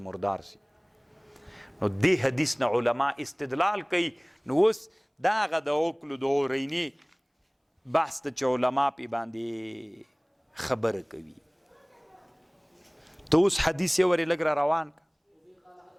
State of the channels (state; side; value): identical; both; correlation 1.00